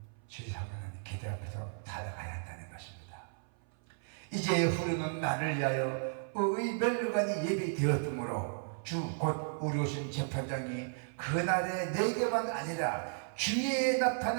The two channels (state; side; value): silent; left; 55 dB below the other